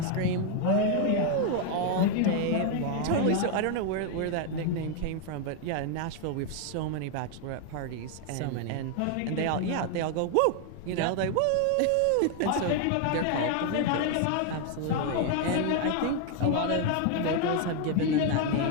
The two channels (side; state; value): both; different; correlation 0.00